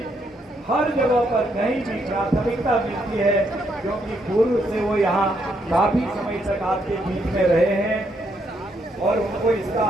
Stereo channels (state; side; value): normal; both; correlation 0.75